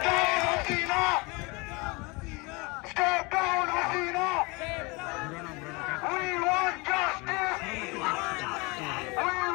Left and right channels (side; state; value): right; quieter; 26.9 dB